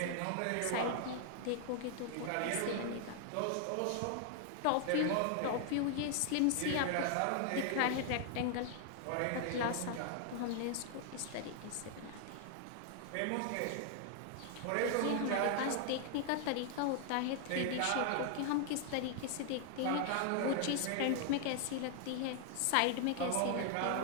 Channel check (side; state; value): both; different; correlation 0.00